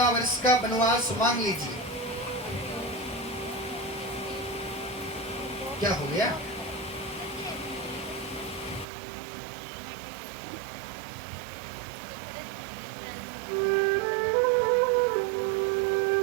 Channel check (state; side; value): drops out; left; at 8.8 s